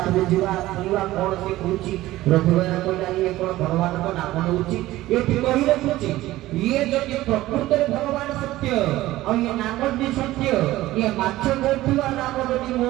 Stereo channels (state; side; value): quieter; left; 16.4 dB